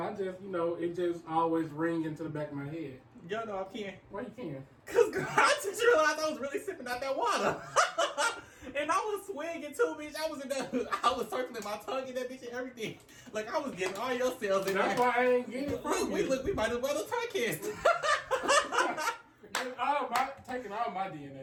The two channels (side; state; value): both; identical; correlation 1.00